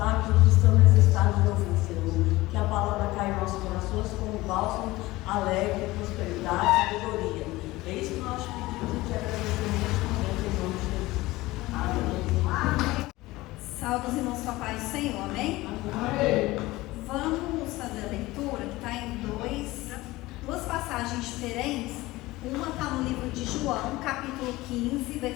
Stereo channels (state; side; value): quieter; right; 19.2 dB